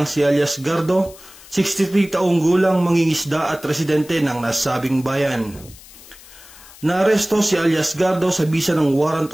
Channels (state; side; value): noise; left; hiss, 21 dB below the sound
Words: si alias Gardo, 63 taong gulang, mangingisda at residente ng nasabing bayan. Naaresto si alias Gardo sa bisa ng warrant